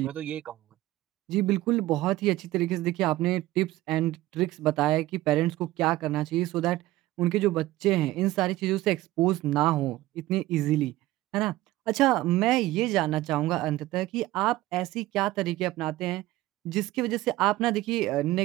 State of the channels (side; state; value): left; quieter; 16.7 dB